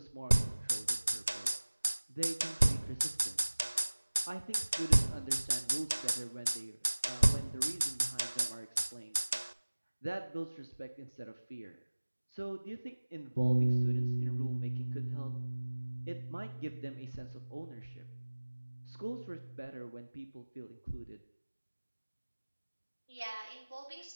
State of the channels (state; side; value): inverted; both; correlation -1.00